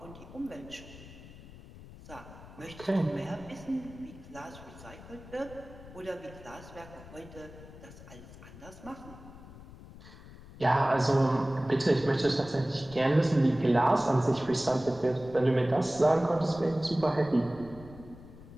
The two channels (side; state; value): left; noise; rumble, 17 dB below the sound